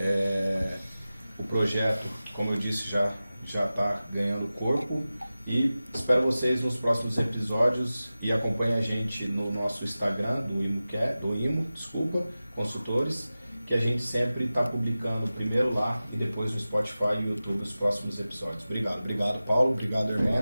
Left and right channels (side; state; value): both; inverted; correlation -0.95